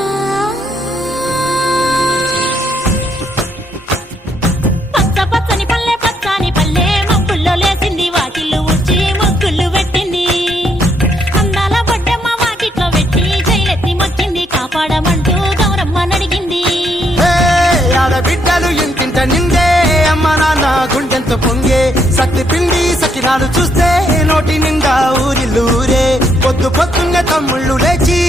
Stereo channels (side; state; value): both; normal; correlation 0.73